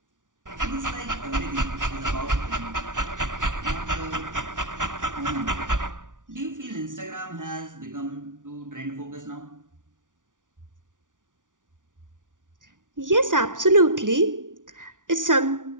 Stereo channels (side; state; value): left; late; 0.88 ms